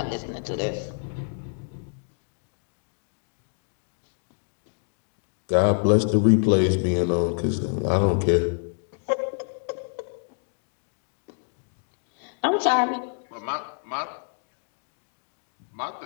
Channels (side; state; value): right; silent; digital silence